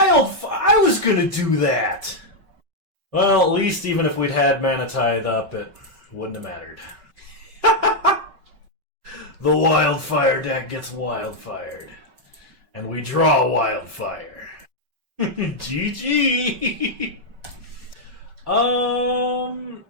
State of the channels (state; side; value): late; left; 5.3 ms